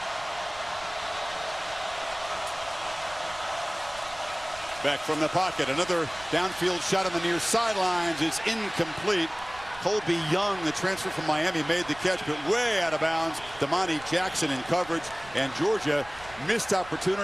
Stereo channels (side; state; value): right; noise; rumble, 20 dB below the sound